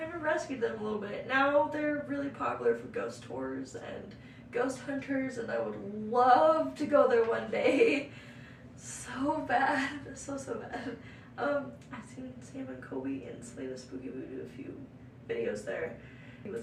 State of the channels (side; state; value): both; identical; correlation 1.00